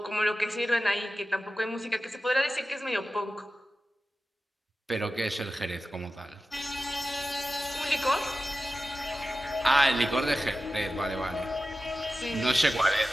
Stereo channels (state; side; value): normal; both; correlation 0.94